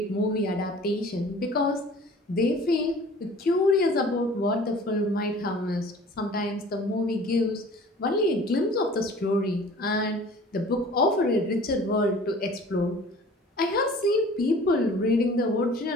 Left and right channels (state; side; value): normal; both; correlation 0.47